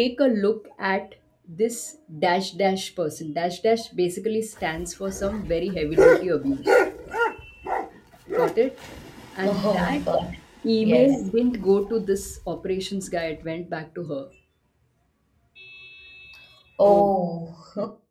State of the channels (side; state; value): both; identical; correlation 1.00